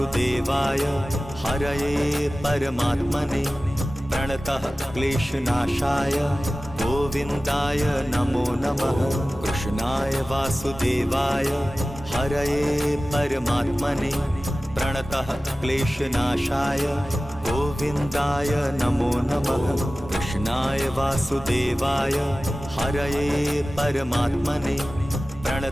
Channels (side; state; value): both; normal; correlation 0.96